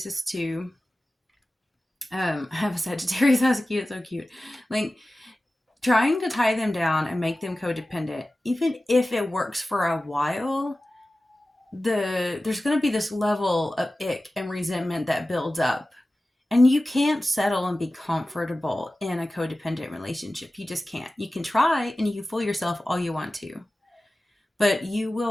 too. I have a Sagittarius. That's cute. So cute. Like, trying to tie them down and make them codependent, even if it works for a while, there's going to be this level of ick and resentment that builds up. And you can't settle and be comfortable in a codependent relationship. You just can't. You can try and you can fool yourself all you want to, but you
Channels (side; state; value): both; normal; correlation 0.96